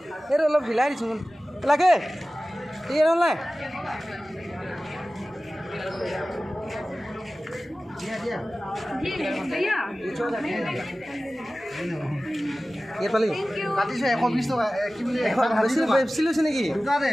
এইটো অলপ হিলাই দিছোঁ লাগে ঠিক আছে নাই ইয়াত পালি কাটিছে 120 টকা কি বুলি বেছি লৈছে নেকি দুটাতে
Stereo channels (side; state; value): both; normal; correlation 0.96